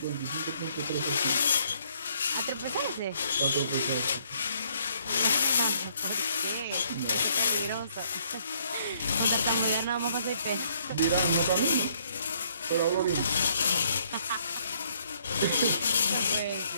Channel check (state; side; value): inverted; both; correlation -0.67